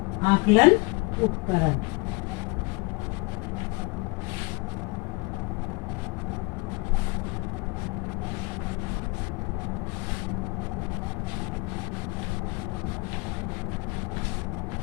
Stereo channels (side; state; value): right; quieter; 27.2 dB